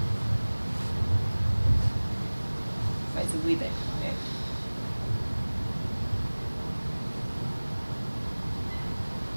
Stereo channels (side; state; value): both; inverted; correlation -1.00